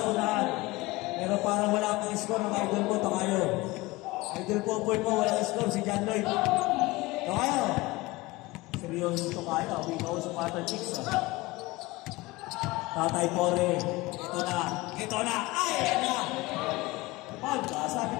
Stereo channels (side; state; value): right; quieter; 21.2 dB